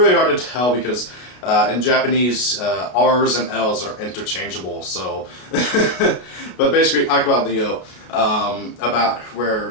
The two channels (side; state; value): right; late; 32 ms